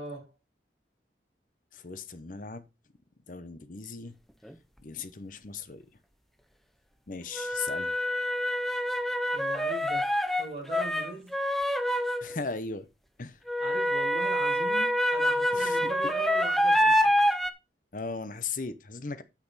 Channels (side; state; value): both; normal; correlation 0.83